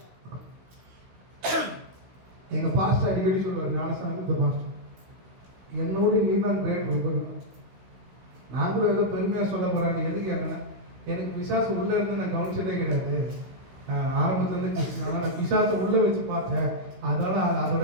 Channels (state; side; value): late; left; 16 ms